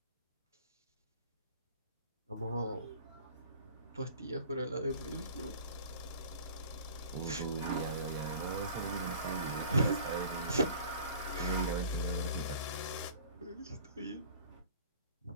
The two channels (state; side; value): inverted; both; correlation -0.45